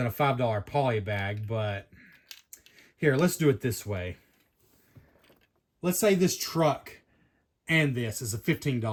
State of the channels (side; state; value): both; identical; correlation 1.00